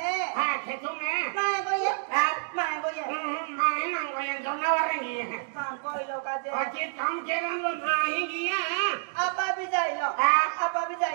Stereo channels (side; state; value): left; silent; digital silence